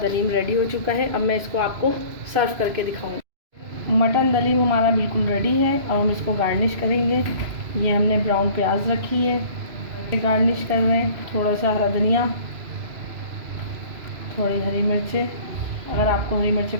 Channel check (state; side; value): late; left; 3.0 ms